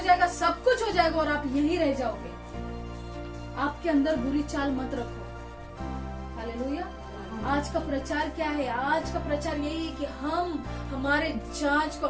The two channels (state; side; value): identical; both; correlation 1.00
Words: सब कुछ हो जाएगा और आप यहीं रह जाओगे। आपके अंदर बुरी चाल मत रखो। हालेलुया। आज का प्रचार क्या है? आज का प्रचार यही है कि हम हमारे